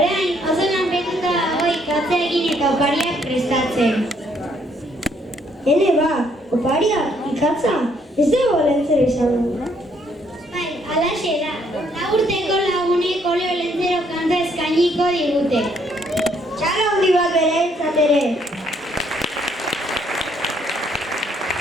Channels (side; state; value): both; normal; correlation 0.68